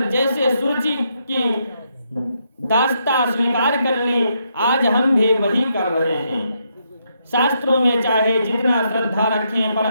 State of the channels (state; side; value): inverted; both; correlation -0.78